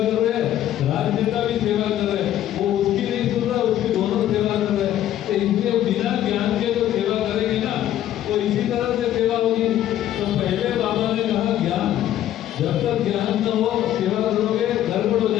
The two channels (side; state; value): right; quieter; 12.2 dB